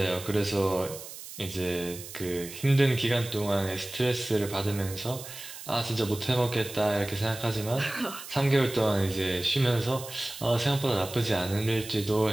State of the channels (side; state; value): right; noise; hiss, 13 dB below the sound